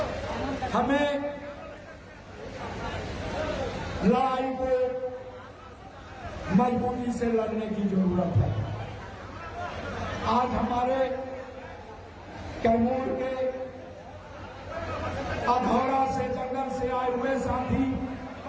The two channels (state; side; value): identical; both; correlation 1.00